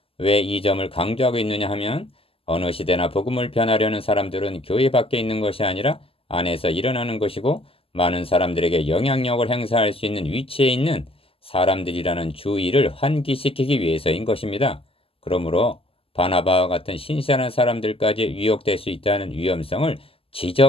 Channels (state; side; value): late; right; 0.27 ms